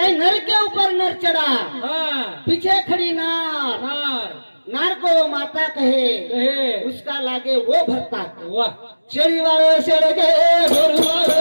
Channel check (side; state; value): both; inverted; correlation -1.00